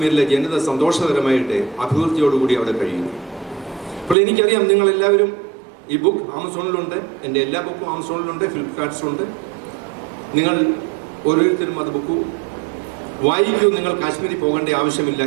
ജനത സന്തോഷകരമായിട്ട് അഭിവൃദ്ധിയോടുകൂടി അവിടെ കഴിയുന്നു. അപ്പോൾ എനിക്കറിയാം നിങ്ങളെല്ലാവരും ഈ ബുക്ക് ആമസോണിലുണ്ട്, എൻ്റെ എല്ലാ ബുക്കും ആമസോണിലുണ്ട്, ഫ്ലിപ്കാർട്ട്സിലുണ്ട്. നിങ്ങൾ ഓരോരുത്തരും അത് ബുക്ക് വായിക്കൂ. നിങ്ങൾ കാശ്മീരിൽ പോകേണ്ട ആവശ്യമില്ല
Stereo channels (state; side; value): drops out; left; at 4.2 s